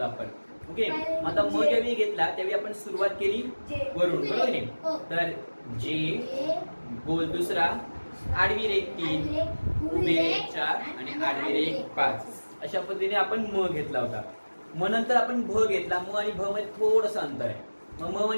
आपण. ओके. आता म ज्यावेळी घेतला त्यावेळी आपण सुरुवात केली वरून, बरोबर नाही. तर जे, गोल दुसरा, आडवी रेघ 3, उभी रेघ 4 आणि आडवी रेघ 5. अशा पद्धतीने आपण म घेतला होता. म नंतर आपण भ घेतला. म आणि भ मध्ये थोडंसं अंतर आहे. मग म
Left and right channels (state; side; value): inverted; both; correlation -1.00